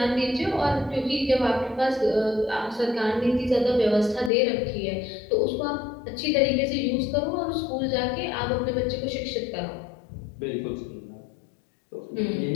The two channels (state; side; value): drops out; right; at 4.3 s